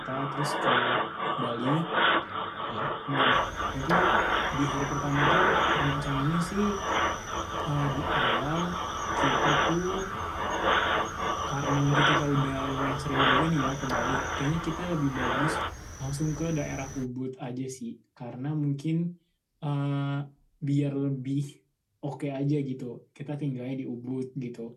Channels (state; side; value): identical; both; correlation 1.00